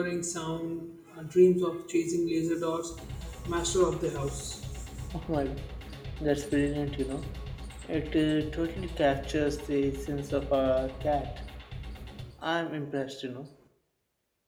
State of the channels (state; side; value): identical; both; correlation 1.00